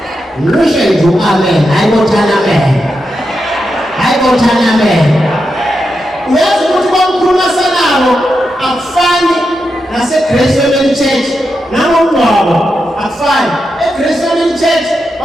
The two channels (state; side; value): normal; both; correlation 0.87